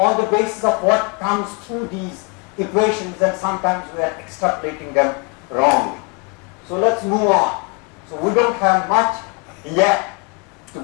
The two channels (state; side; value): quieter; right; 33.6 dB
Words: the basis of what comes through these equations, and sometimes we are extrapolating them wrongly. So let's move on. So we don't have much yet to